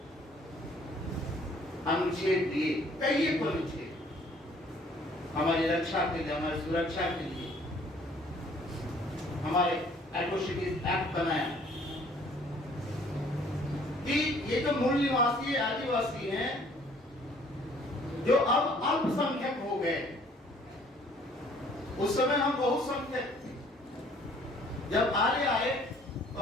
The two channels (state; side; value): normal; both; correlation 0.58